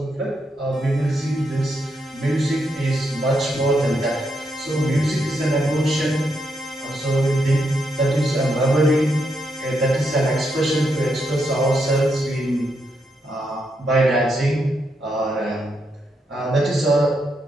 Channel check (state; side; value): normal; both; correlation 0.80